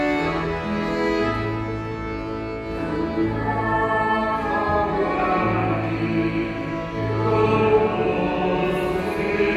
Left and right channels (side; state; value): both; identical; correlation 1.00